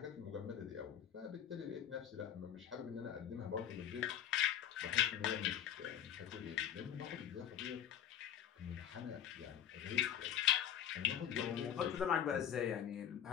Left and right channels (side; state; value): right; quieter; 10.1 dB